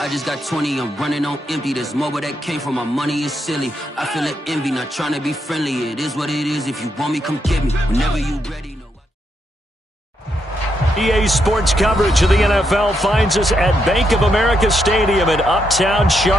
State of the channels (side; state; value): both; normal; correlation 0.80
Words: just got 20, I'm running on empty. This mobile that came from my money is silly. I feel it envy, not trying to be friendly. It is what it is. If you want me, come get me. Whenever you ready. EA Sports coverage of the NFL finds us at Bank of America Stadium in Uptown